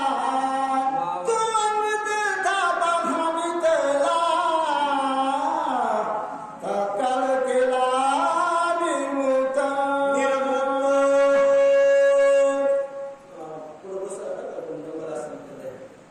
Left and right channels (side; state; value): both; identical; correlation 1.00